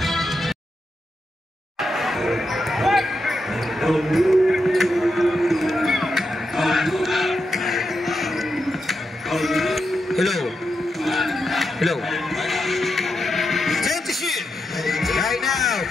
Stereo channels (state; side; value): normal; both; correlation 0.86